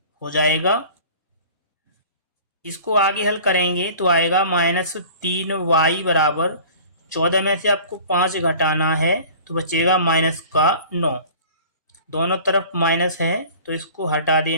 हो जाएगा। इसको आगे हल करेंगे तो आएगा -3y = 14 में से आपको 5 घटाना है तो बचेगा माइनस का 9। दोनों तरफ माइनस है तो इसको हटा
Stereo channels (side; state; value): both; inverted; correlation -0.44